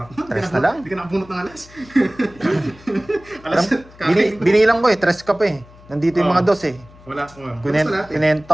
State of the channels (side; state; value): left; noise; hum, 23 dB below the sound